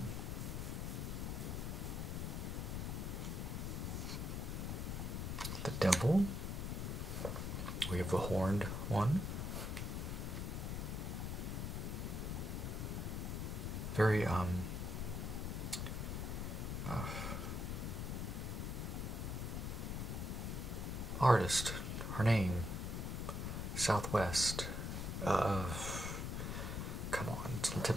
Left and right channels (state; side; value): noise; left; rumble, 2 dB below the sound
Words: The devil. We have the horned one. Very artist. Her name. Southwest. Come on, it's on the